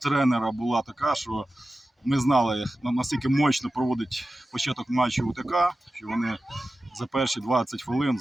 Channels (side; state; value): both; normal; correlation 0.94